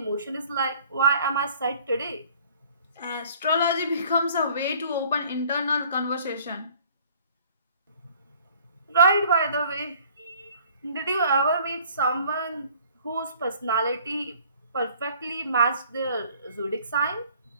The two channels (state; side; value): inverted; both; correlation -0.54